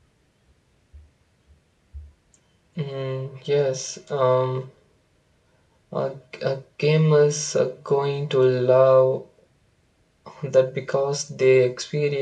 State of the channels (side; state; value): both; identical; correlation 1.00